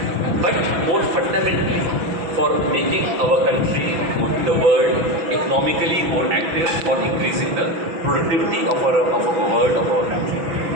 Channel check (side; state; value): left; late; 6.1 ms